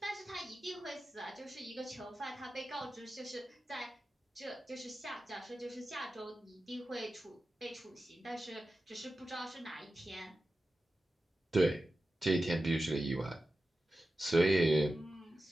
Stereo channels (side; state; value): both; normal; correlation 0.93